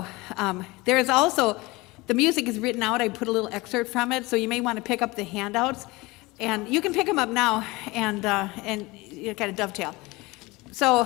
there is also, the music is written out. I put a little excerpt from it, so you may want to pick up the handouts, and you can pick them up now and you kind of dovetail. So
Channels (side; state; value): right; quieter; 22.7 dB